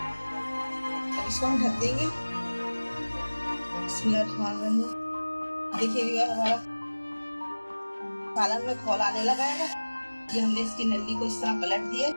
इसको हम ढक देंगे। देखिए हमारा पालक में खौल आने लगा है। ये हमने इसकी नली को इस तरह पलट दिया।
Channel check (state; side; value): inverted; both; correlation -1.00